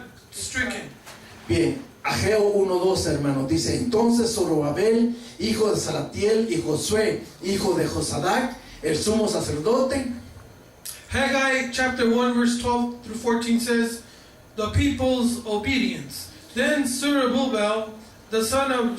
stricken. Bien, Ageo 1:2, hermanos, dice, entonces Zorobabel, hijo de Salatiel, y Josué, hijo de Josadac, el sumo sacerdote, Haggai chapter 1 verse 12 through 14 says, the people's obedience. Then Zerubbabel, the son of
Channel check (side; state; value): both; identical; correlation 1.00